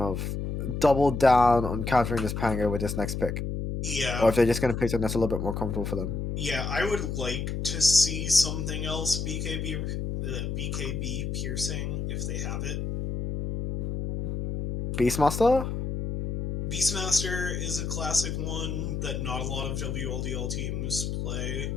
double down on countering this Pango with this next pick. Yeah. Or if they're just going to pick something that's a little bit more comfortable for them. Yeah, I would like to see something else BKB piercing if they have it. Beastmaster? Beastmaster is a classic one that not a lot of WLDL teams play.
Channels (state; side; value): noise; left; hum, 3 dB below the sound